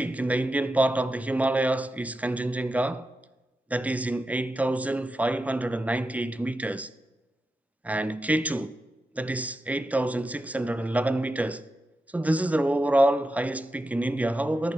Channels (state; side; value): normal; both; correlation 0.89